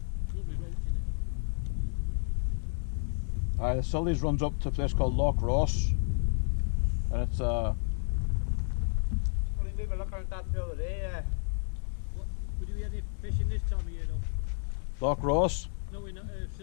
lovely roach in it. The Sully's runs up to a place called Loch Ross, and it's Well, we were looking at that the other day. What, would you be any fishing this time of year though? Loch Ross. No, in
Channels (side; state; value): right; silent; digital silence